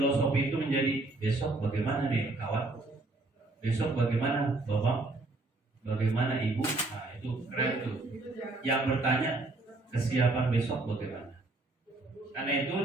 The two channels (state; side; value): quieter; left; 3.0 dB